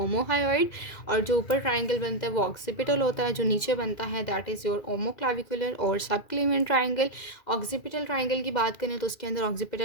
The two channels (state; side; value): late; right; 2.0 ms